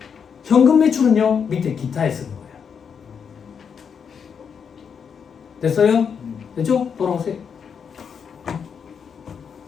현금 매출은요 밑에 기타에 쓰는 거예요. 됐어요? 됐죠? 돌아오세요.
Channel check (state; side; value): quieter; right; 6.8 dB